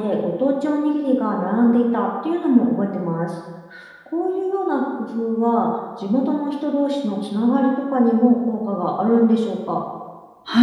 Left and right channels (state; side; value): identical; both; correlation 1.00